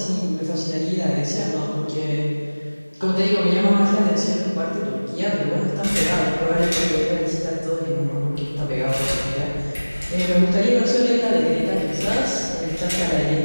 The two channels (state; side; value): inverted; both; correlation -1.00